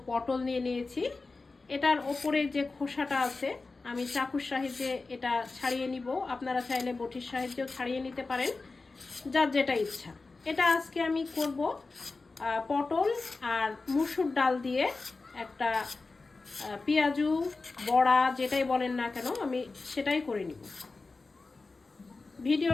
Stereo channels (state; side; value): quieter; right; 3.8 dB